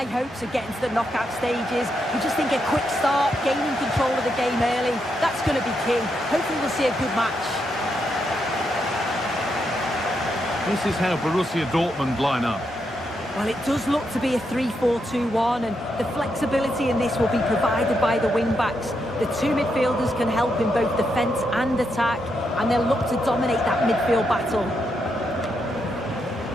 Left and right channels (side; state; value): both; normal; correlation 0.81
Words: hopes of getting to the knockout stages. We just think a quick start, gaining control of the game early, that's going to be key. Hopefully we'll see a good match. This is how Borussia Dortmund line up. Well, it does look to be a 3-4-2-1, and the flexibility in this will be provided by the wing-backs. The two midfielders can help in both defence and attack, and they'll look to dominate that midfield battle.